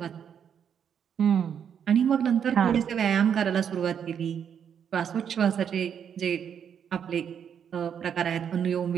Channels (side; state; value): left; quieter; 8.1 dB